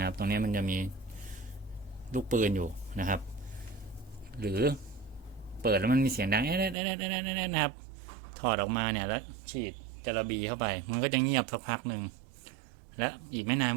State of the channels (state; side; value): drops out; left; at 6.8 s